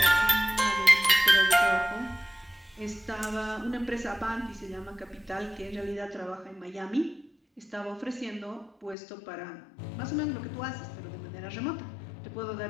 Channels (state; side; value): drops out; right; at 9.0 s